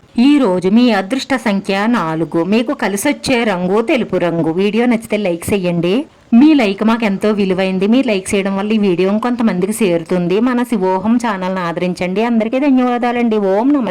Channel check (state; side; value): identical; both; correlation 1.00